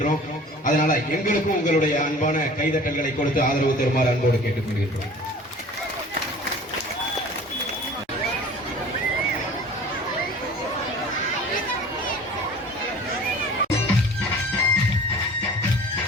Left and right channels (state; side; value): normal; both; correlation 0.44